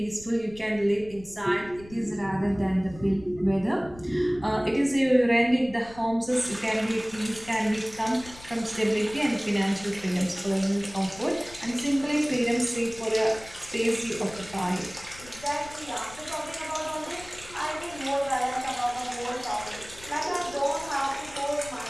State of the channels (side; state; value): left; noise; rumble, 19 dB below the sound